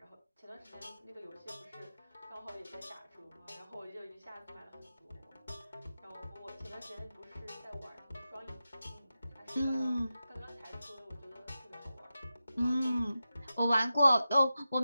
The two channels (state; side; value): inverted; both; correlation -0.92